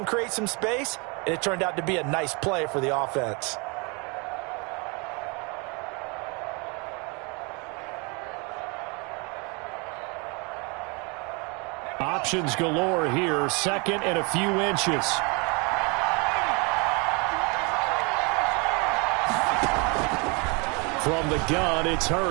create some space, and it turned out to be a nice play for the offense. Options galore here. 2nd and a few inches. From the gun, it's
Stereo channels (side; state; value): left; quieter; 30.7 dB